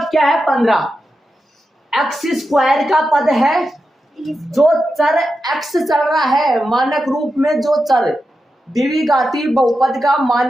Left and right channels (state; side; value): normal; both; correlation 0.89